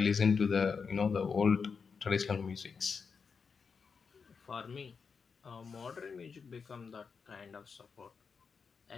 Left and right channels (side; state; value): right; quieter; 5.6 dB